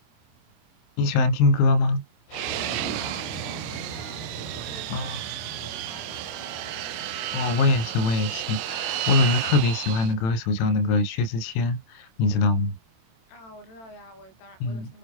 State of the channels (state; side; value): late; right; 26 ms